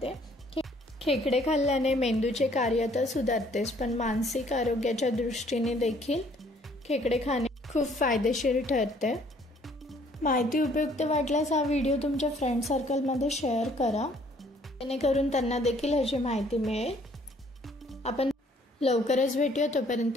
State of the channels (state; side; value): normal; both; correlation 0.61